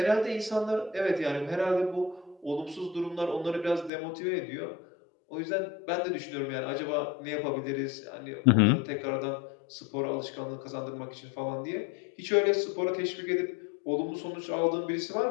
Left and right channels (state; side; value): drops out; right; at 3.9 s